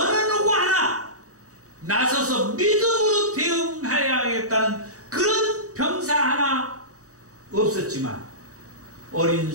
누구 하나 나서서 믿음으로 대응해야겠다는 그런 병사 하나 없었지만 어린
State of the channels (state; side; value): late; left; 0.66 ms